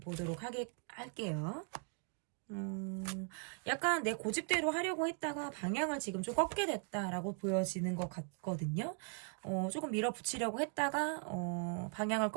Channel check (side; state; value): left; quieter; 38.6 dB